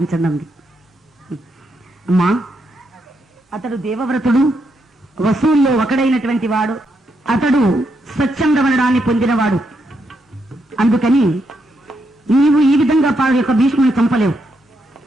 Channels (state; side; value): normal; both; correlation 0.80